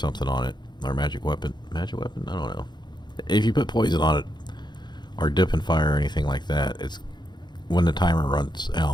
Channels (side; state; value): right; late; 0.21 ms